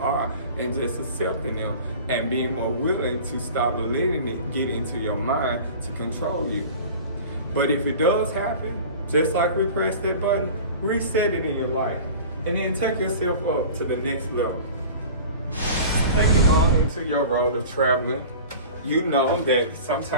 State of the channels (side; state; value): both; inverted; correlation -0.39